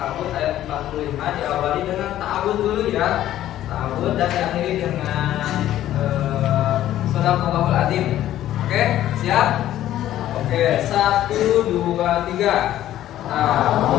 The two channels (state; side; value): quieter; right; 12.9 dB